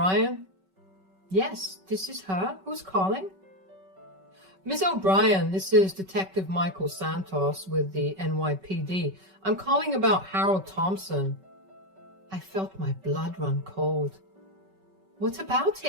Yes, this is her. Who's calling? Miss O'Brien, this is Detective Michael Santos with the NYPD. I'm calling about Harold Thompson. I felt my blood run cold. What about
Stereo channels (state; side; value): late; left; 5.3 ms